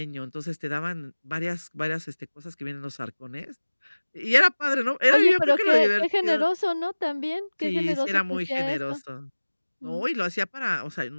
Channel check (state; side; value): inverted; both; correlation -1.00